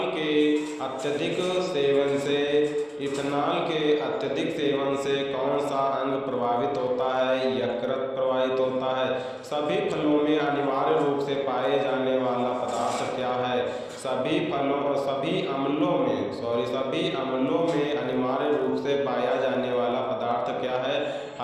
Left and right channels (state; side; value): identical; both; correlation 1.00